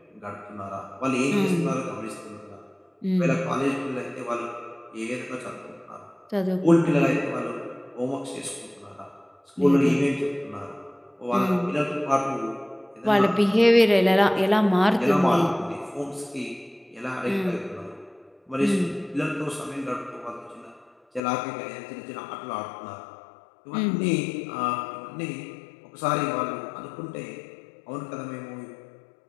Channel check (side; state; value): right; drops out; at 21.2 s